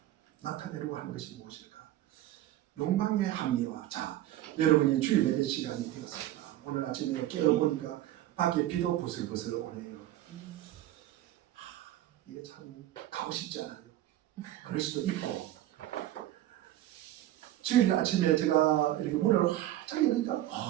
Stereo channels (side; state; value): left; quieter; 13.9 dB